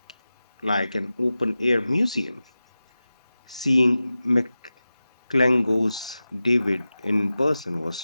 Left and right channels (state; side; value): inverted; both; correlation -0.95